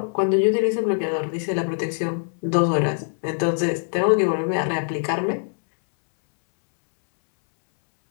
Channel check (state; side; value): silent; right; 64 dB below the other